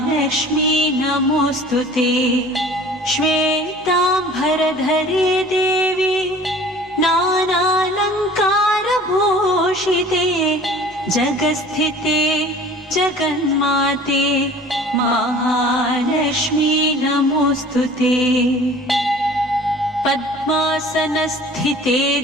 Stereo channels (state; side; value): normal; both; correlation 0.46